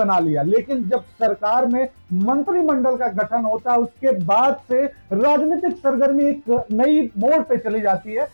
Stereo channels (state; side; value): inverted; both; correlation -1.00